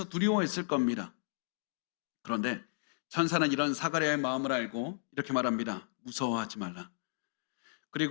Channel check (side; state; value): right; silent; digital silence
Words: 두려워했을 겁니다. 그런데 천사는 이런 사가랴의 마음을 알고 이렇게 말합니다. 무서워하지 말라.